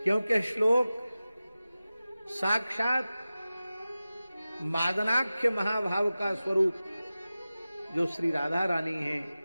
क्योंकि श्लोक साक्षात मादनाख्य महाभाव का स्वरूप जो श्री राधा रानी है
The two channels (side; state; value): both; inverted; correlation -0.96